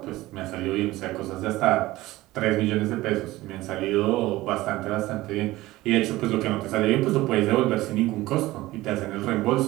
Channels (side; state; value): left; quieter; 18.0 dB